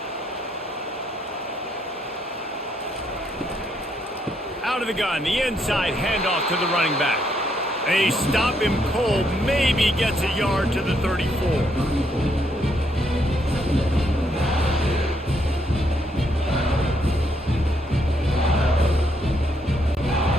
Out of the gun, the inside handoff to the running back. They stop him cold, maybe gets a yard to the 34.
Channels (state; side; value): normal; both; correlation 0.74